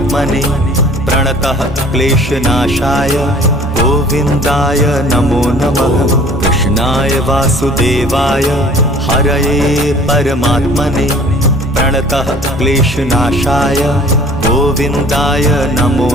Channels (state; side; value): normal; both; correlation 0.51